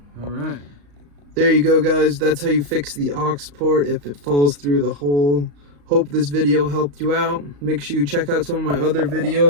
All right. There you go, guys. That's how you fix the aux port if it falls through the hole. Hope this video helped you out. Make sure you check out some of my other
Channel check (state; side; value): late; left; 35 ms